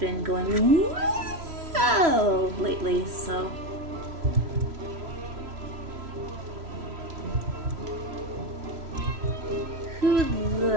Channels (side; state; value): left; late; 3.1 ms